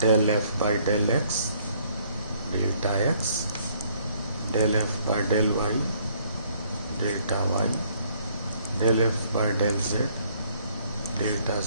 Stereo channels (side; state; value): both; inverted; correlation -0.63